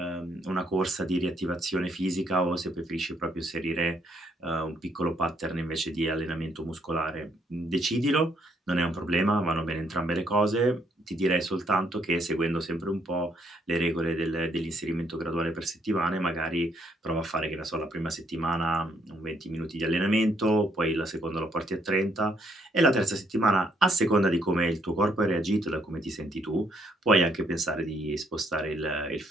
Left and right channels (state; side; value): normal; both; correlation 0.71